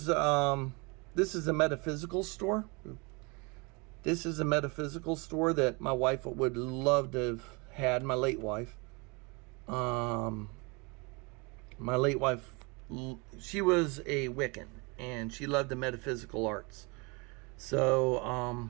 a metaphysical store. This is a metaphysical store that my wife would love to have had, my late wife. My late wife, she was a Wiccan, and she loved the metaphysical arts.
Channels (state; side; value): quieter; left; 29.1 dB